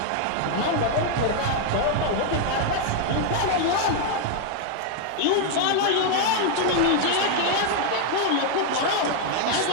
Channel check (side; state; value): both; different; correlation 0.00